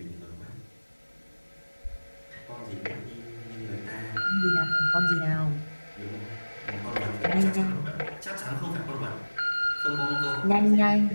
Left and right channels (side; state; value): both; inverted; correlation -1.00